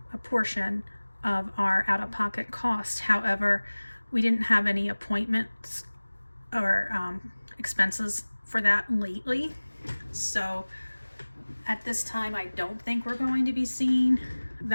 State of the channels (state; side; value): inverted; both; correlation -1.00